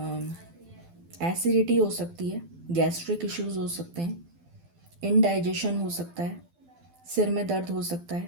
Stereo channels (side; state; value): left; late; 12 ms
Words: एसिडिटी हो सकती है, गैस्ट्रिक इश्यूज हो सकते हैं, इनडाइजेशन हो सकता है, सिर में दर्द हो सकता